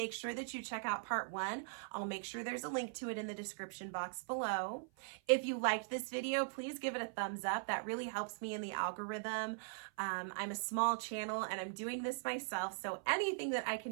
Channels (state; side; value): silent; left; 51 dB below the other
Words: sure that you check out part 1. I'll make sure there's a link to it in the description box below. If you liked this video, please give it a thumbs up. That really helps me in the algorithm. I'm a small channel and I'm doing this myself, so anything that I